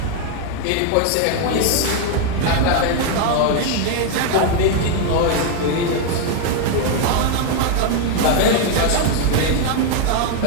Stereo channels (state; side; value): different; both; correlation 0.00